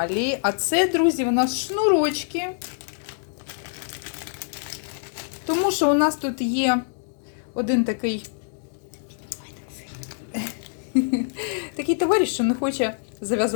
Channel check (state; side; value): silent; right; digital silence